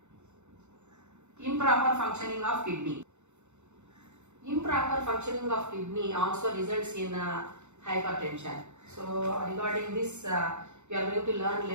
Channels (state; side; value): late; left; 0.83 ms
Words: improper functioning of kidney. Improper functioning of kidney also results in hypertension. So regarding this we are going to learn